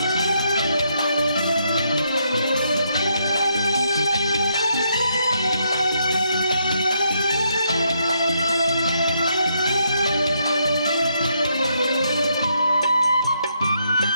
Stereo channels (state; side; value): inverted; both; correlation -0.75